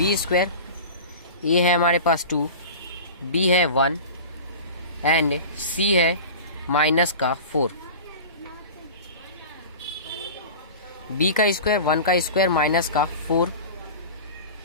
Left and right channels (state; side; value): inverted; both; correlation -0.34